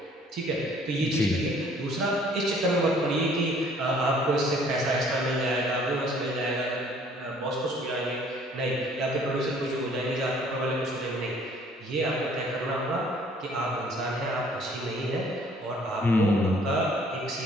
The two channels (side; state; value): both; normal; correlation 0.58